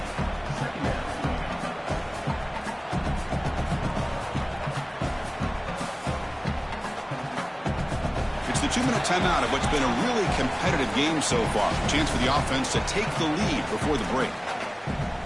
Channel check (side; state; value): both; identical; correlation 1.00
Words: It's the 2-minute timeout of what's been a really competitive game so far. Chance for the offense to take the lead before the break.